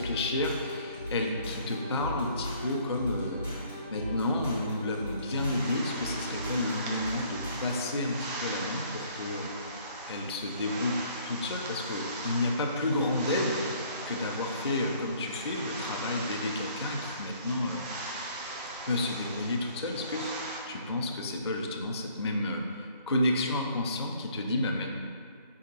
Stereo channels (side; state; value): both; inverted; correlation -0.59